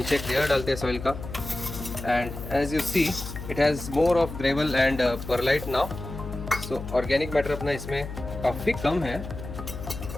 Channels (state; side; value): noise; left; hum, 9 dB below the sound